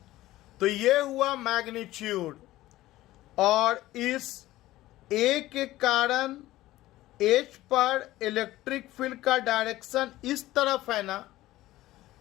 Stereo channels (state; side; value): quieter; right; 16.3 dB